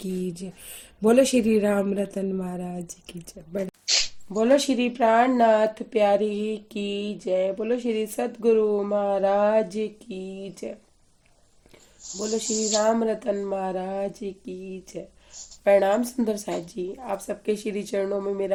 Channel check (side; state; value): both; identical; correlation 1.00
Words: जय। बोलो श्री राम रतन महाराज की जय। बोलो श्री प्राणनाथ प्यारे की जय। बोलो श्री सदगुरु महाराज की जय। बोलो श्री राम रतन महाराज की जय। प्रणाम सुंदर साथ जी, आप सबके श्री चरणों में